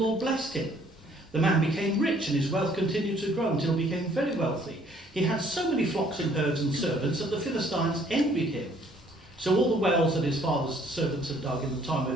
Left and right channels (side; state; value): both; normal; correlation 0.61